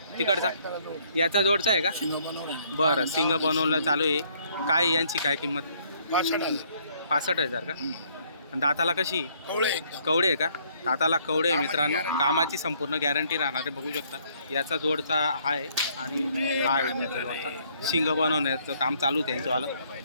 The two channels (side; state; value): both; inverted; correlation -0.65